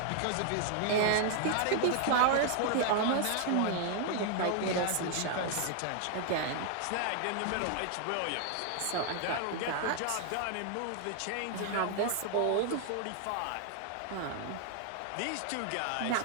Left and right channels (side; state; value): both; different; correlation 0.00